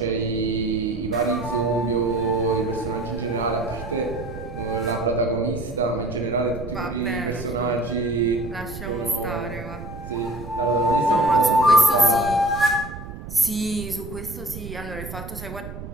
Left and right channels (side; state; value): right; noise; rumble, 11 dB below the sound